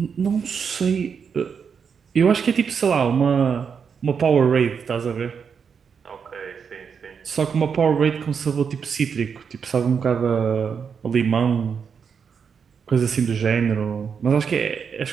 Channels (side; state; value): left; quieter; 6.5 dB